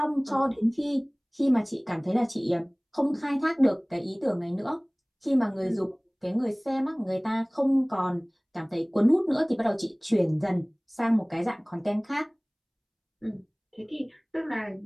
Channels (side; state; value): both; identical; correlation 1.00